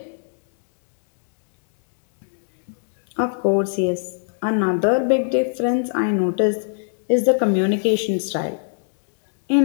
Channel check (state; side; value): silent; right; 65 dB below the other